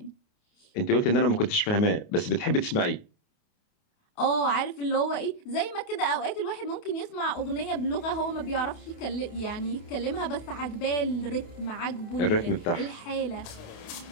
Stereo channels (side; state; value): right; late; 28 ms